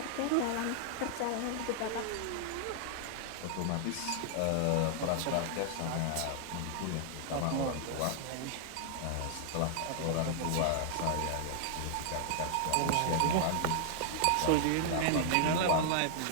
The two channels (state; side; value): different; both; correlation -0.01